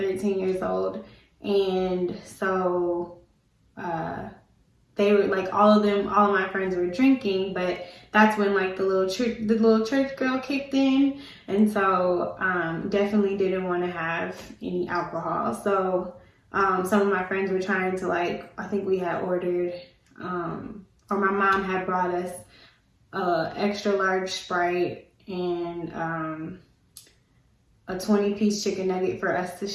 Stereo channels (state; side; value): identical; both; correlation 1.00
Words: years old, and so they were like, all of my friends were drinking, but that's when like the little church girl kicked in, and so definitely didn't want to have any alcohol. So some of my friends were trying to, like, I think we had ordered or my mom had brought us extra large Sprite and a 20-piece chicken nugget for us to